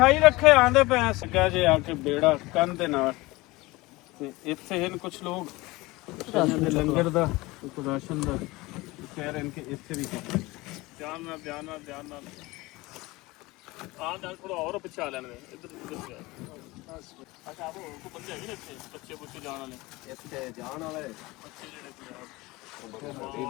ਰੱਖੇ ਆਂਦੇ ਪਏ ਸੱਗਾ ਜੇ ਆ ਕੇ ਬੇੜਾ ਕੰਨ ਦੇ ਨਾਲ। ਤੇ ਇੱਥੇ ਹਨ ਕੁਝ ਲੋਕ ਦੇ ਲੰਗਰ ਦਾ ਕੋਈ ਰਾਸ਼ਨ ਦਾ ਕਹਿ ਰਹੇ ਨੇ ਕਿ ਇੱਥੇ ਵੀ ਧਿਆਨ ਨਾਲ ਨਾਲ ਥੋੜਾ ਹੋਰ ਪਿੱਛੇ ਲੈਣ ਦੇ ਇੱਧਰ ਅੱਛਾ ਉਹ ਕੋ ਬੰਦੇ ਹੈਗੇ ਨੇ ਇੱਥੇ ਬੱਚੇ ਬੁੱਚੇ ਜਾਣ ਵਾਲੇ ਇੱਥੇ ਜਾਣ ਵਾਲੇ ਬੱਚੇ ਜਿਹੜੇ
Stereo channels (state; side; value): quieter; right; 21.4 dB